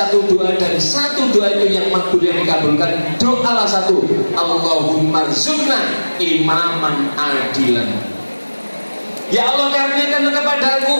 doa dan satu doa itu yang makbul, yang dikabulkan, doalah satu, Allahumma rzuqna imaman adilan. Ya Allah, karuniakan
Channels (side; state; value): both; inverted; correlation -1.00